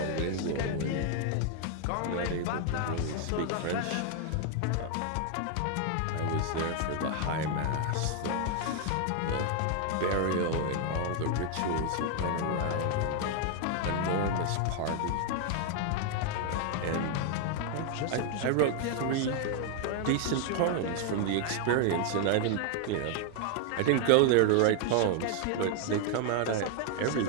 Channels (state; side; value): different; both; correlation 0.00